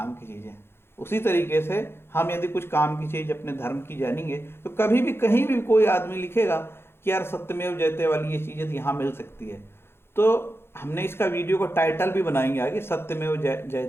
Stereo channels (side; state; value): right; late; 0.11 ms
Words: की चीजें। उसी तरीके से हम यदि कुछ काम की चीज अपने धर्म की जानेंगे तो कभी भी कहीं भी कोई आदमी लिखेगा कि यार सत्यमेव जयते वाली ये चीज यदि यहाँ मिल सकती है, तो हमने इसका वीडियो को टाइटल भी बनाएंगे आगे, सत्यमेव